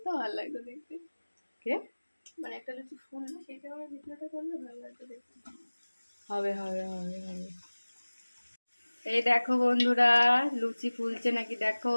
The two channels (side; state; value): both; inverted; correlation -1.00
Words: ভালো লাগতো দেখতে। কে মানে একটা লুচি ফুললো, সেই সময় ভিডিওটা করলে ভালো লাগতো দেখতে। হবে হবে হবে হবে। এই দেখো বন্ধুরা, লুচি ফুলছে নাকি